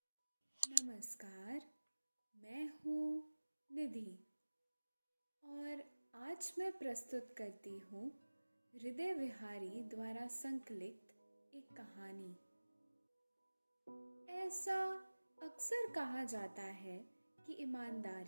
नमस्कार, मैं हूँ निधि और आज मैं प्रस्तुत करती हूँ हृदय विहारी द्वारा संकलित एक कहानी। ऐसा अक्सर कहा जाता है कि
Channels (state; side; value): inverted; both; correlation -1.00